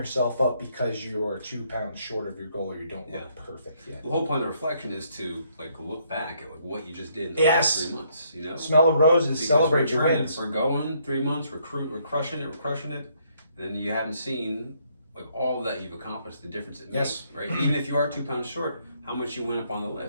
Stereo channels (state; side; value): inverted; both; correlation -0.70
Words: up because you're 2 pounds short of your goal or you don't look perfect yet. The whole point of the reflection is to look back at what you just did in the last 3 months. Smell the roses, celebrate your wins. We're going 3 months. We're crushing it. And then you haven't seen all that you've accomplished, the difference it makes. Right. Even if you are 2 pounds short, how much you went up on the